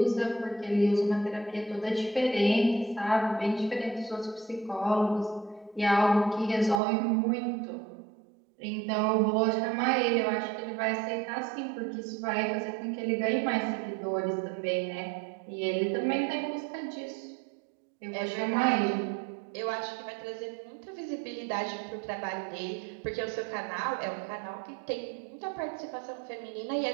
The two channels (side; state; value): left; drops out; at 6.8 s